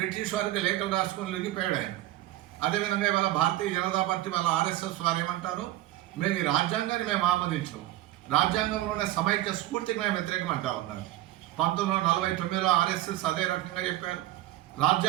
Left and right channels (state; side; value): quieter; left; 15.3 dB